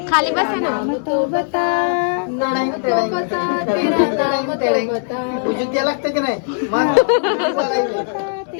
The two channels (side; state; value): right; silent; digital silence